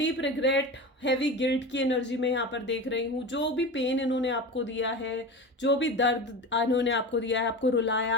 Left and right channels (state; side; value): normal; both; correlation 0.28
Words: रिग्रेट, हैवी गिल्ट की एनर्जी में यहाँ पर देख रही हूँ. जो भी पेन इन्होंने आपको दिया है, जो भी दर्द इन्होंने आपको दिया है, आपको रुलाया